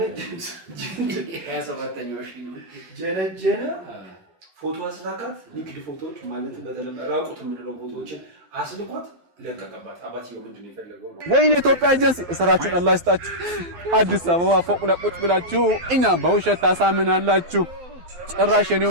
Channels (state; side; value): late; left; 12 ms